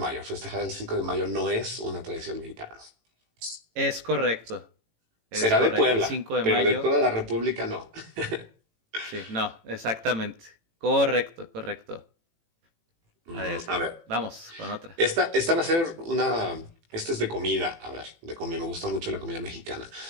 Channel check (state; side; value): late; left; 18 ms